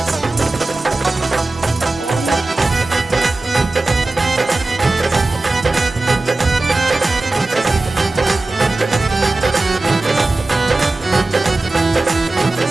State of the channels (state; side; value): quieter; left; 3.1 dB